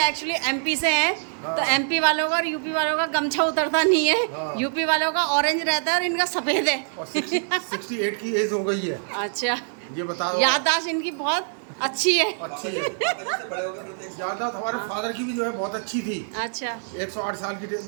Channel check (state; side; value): silent; left; 62 dB below the other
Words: एक्चुअली एमपी से हैं। हाँ। तो एमपी वालों का और यूपी वालों का गमछा उतरता नहीं है। हाँ। यूपी वालों का ऑरेंज रहता है और इनका सफेद है। और 68 की एज हो गई है। अच्छा, ये बताओ। याददाश्त इनकी बहुत अच्छी है। अच्छी है। याददाश्त हमारे फादर की भी जो है बहुत अच्छी थी। अच्छा 108 साल की